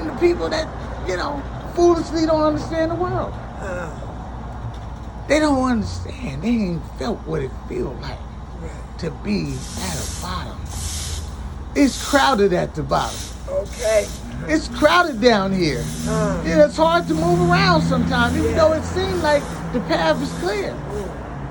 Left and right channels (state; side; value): identical; both; correlation 1.00